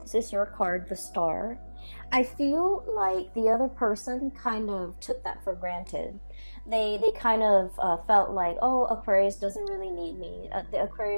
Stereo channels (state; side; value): inverted; both; correlation -1.00